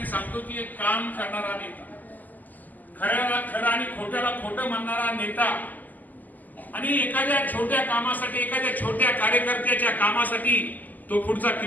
सांगतो की एक काम करणारा नेता, खऱ्याला खरं आणि खोट्याला खोटं म्हणणारा नेता आणि एखाद्या छोट्या कामासाठी, एखाद्या छोट्या कार्यकर्त्याच्या कामासाठी तो पुढचा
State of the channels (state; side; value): late; right; 0.083 ms